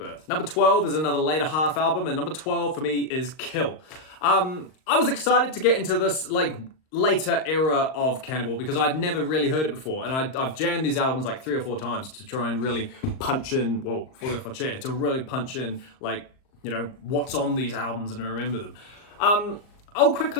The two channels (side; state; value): right; late; 38 ms